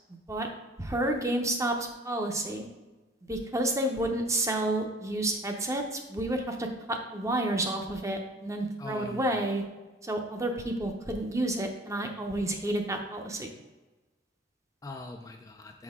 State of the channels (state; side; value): normal; both; correlation 0.49